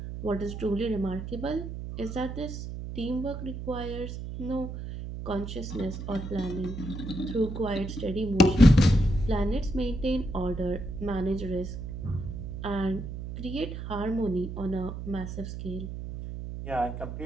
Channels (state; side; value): noise; right; hum, 7 dB below the sound